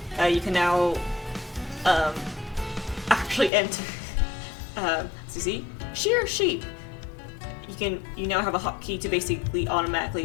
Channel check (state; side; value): drops out; right; at 3.5 s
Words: you can now actually enter. See, shear sheep. You now have a hotkey to basically